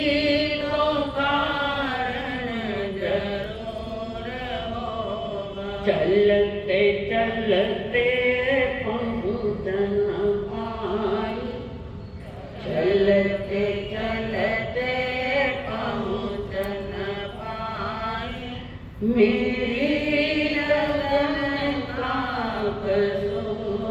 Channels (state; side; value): identical; both; correlation 1.00